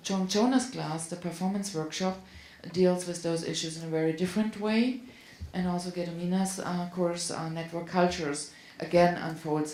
Joan Jonah's class, the performance workshop, deals with those issues in a very different way, and also Gedomina's course, Network Cultures, again unfolds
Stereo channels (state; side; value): identical; both; correlation 1.00